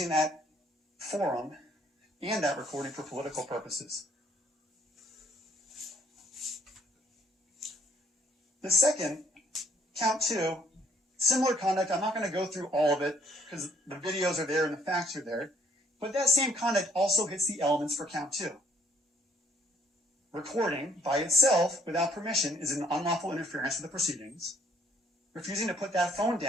that forum and that recording for political purposes. The second, count two, similar conduct. I'm not going to go through all of it because the videos are there and the facts are there. But that same conduct also hits the elements for count two. Recording by itself without permission is an unlawful interference with the proceedings. Refusing to put that phone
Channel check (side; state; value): both; normal; correlation 0.64